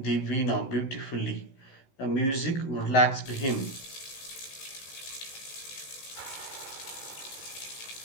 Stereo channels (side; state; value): right; late; 16 ms